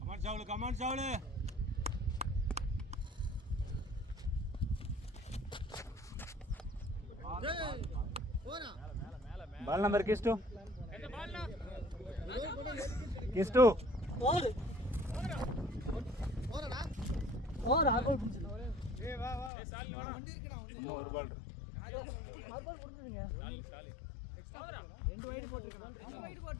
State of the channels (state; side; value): drops out; right; at 19.5 s